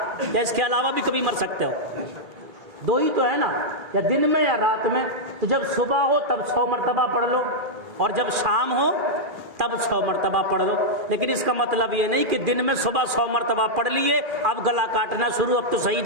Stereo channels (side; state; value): left; late; 2.4 ms